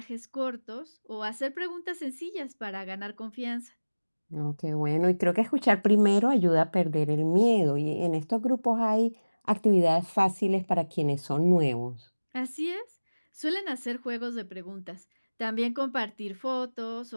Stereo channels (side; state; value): both; inverted; correlation -1.00